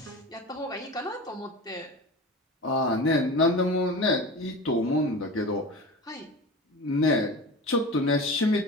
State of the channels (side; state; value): both; normal; correlation 0.31